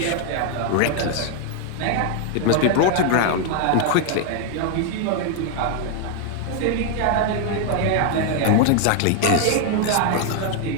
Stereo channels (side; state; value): both; different; correlation 0.01